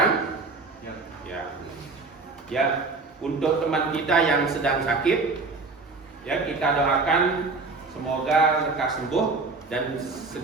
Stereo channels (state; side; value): quieter; left; 3.9 dB